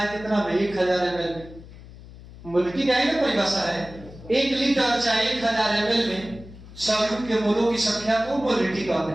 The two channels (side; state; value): left; noise; hum, 18 dB below the sound